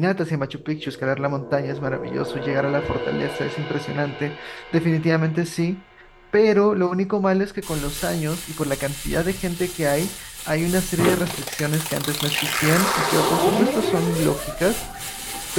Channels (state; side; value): identical; both; correlation 1.00